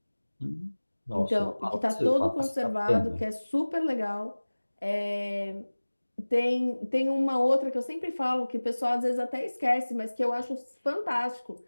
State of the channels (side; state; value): both; inverted; correlation -1.00